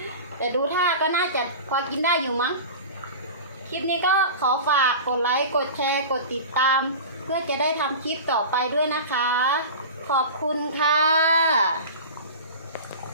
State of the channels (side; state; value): both; inverted; correlation -0.33